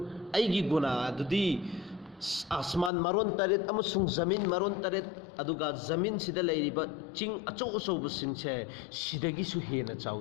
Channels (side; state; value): right; drops out; at 2.9 s